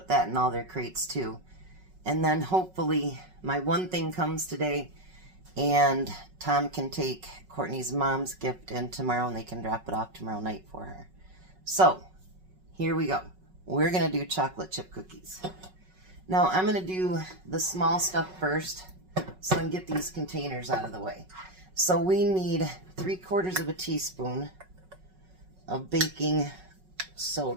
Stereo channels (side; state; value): left; late; 5.4 ms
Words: that in all their crates too. And then hopefully my one thing comes today and Tom can take Courtney's mom's gift in tomorrow and they can drop it off tomorrow night for her. So, here we go. We're going to do chocolate chip cookies. Now, I'm going to do the small stuff first so I can get these containers out of the way. So we need 3/4 of a teaspoon of baking